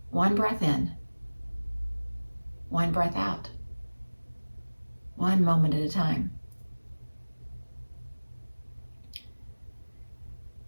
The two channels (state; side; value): inverted; both; correlation -1.00